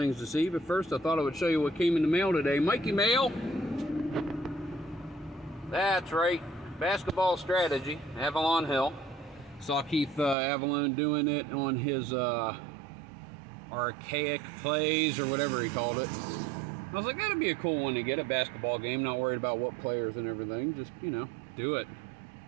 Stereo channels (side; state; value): left; drops out; at 10.4 s